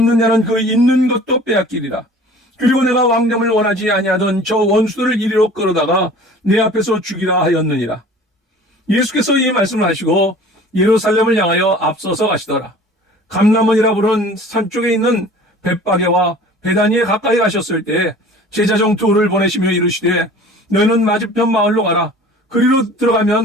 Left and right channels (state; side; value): normal; both; correlation 0.45